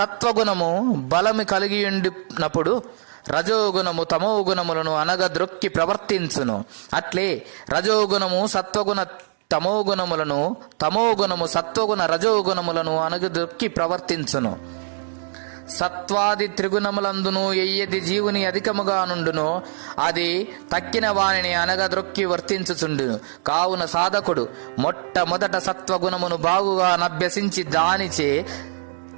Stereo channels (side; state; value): left; silent; digital silence